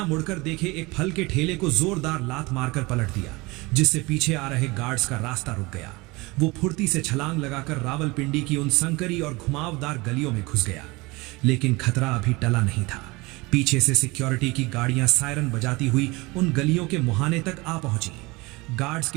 मुड़कर देखे एक फल के ठेले को जोरदार लात मारकर पलट दिया, जिससे पीछे आ रहे गार्ड्स का रास्ता रुक गया। वो फुर्ती से छलांग लगाकर रावलपिंडी की उन संकरी और घुमावदार गलियों में घुस गया। लेकिन खतरा अभी टला नहीं था। पीछे से सिक्योरिटी की गाड़ियां सायरन बजाती हुई उन गलियों के मुहाने तक आ पहुंची। गार्ड्स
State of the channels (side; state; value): left; quieter; 23.8 dB